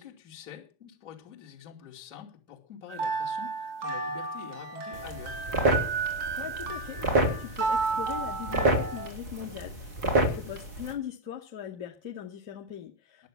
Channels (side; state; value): left; late; 4.4 ms